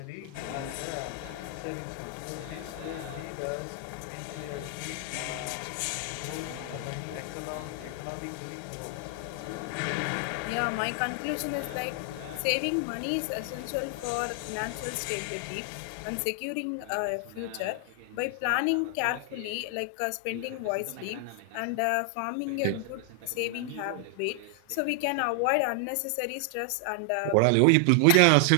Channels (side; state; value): both; different; correlation 0.00